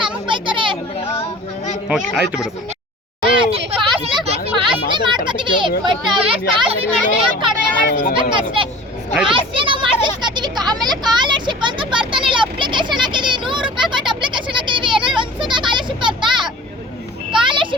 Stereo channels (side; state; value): both; normal; correlation 0.42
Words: ನಮಗ್ ಬೈತಾರೆ. ಓಕೆ, ಆಯ್ತು ಬಿಡು. ಪಾಸ್ನೆ ಮಾಡ್ಕೊತೀವಿ ಬಟ್ ಕಡಿಮೆ ಮಾಡಿಸ್ಬೇಕಷ್ಟೇ. ಪಾಸ್ನೆ ನಾವು ಮಾಡಿಸ್ಕೊತೀವಿ. ಆಮೇಲೆ ಸ್ಕಾಲರ್ಶಿಪ್ ಅಂತ ಬರ್ತಾನಿಲ್ಲ. ಅಪ್ಲಿಕೇಶನ್ ಹಾಕಿದೀವಿ, 100 ರೂಪಾಯಿ ಕೊಟ್ಟು ಅಪ್ಲಿಕೇಶನ್ ಹಾಕಿದೀವಿ. ಏನಾದ್ರು ಒಂದ್ಸಲ ಸ್ಕಾಲರ್ಶಿಪ್ ಬರ್ತಾ?